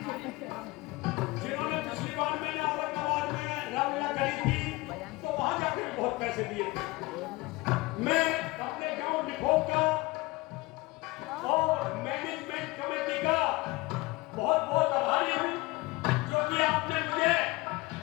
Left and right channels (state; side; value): quieter; right; 22.0 dB